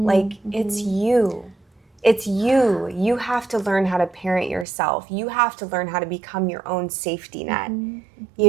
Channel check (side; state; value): left; drops out; at 4.7 s